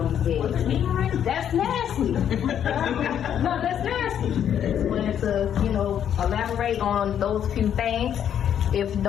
these beds. That's nasty. No, that's nasty. Just wanted to, elaborate on those few things. If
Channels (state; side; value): quieter; right; 9.4 dB